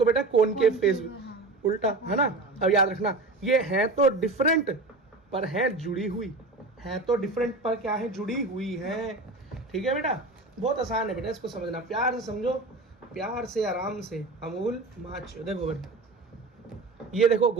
बेटा कॉनकेव फेस, उल्टा, है ना। अब याद रखना, ये है तो डिफरेंट पर है जुड़ी हुई, है तो डिफरेंट पर क्या है? जुड़ी हुई है। ठीक है बेटा, बहुत आसान है बेटा, इसको समझना, प्यार से समझो, प्यार से, आराम से। अमूल माचो, देखो बेटा, ये देखो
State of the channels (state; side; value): quieter; left; 3.2 dB